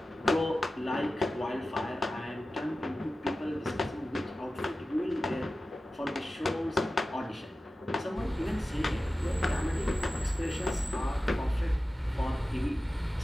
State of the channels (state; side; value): normal; both; correlation 0.95